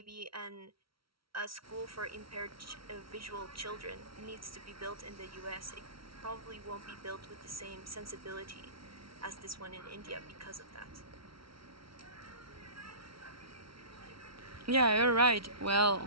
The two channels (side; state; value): left; late; 0.75 ms